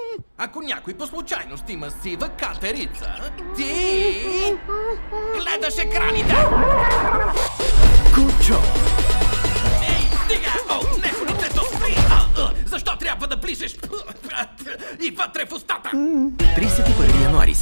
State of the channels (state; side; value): inverted; both; correlation -1.00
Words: Ако някой по случайност има сива катерица, ти гледаш екраните. Кучо. Ей, стига! О, не, лицето спри! Защо трябва да ближеш и вътре в устата? 31 януари,